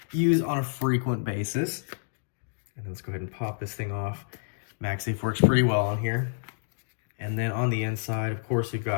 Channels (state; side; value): silent; right; digital silence